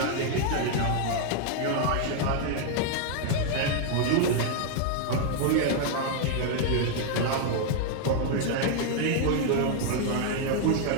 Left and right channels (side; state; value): both; different; correlation 0.00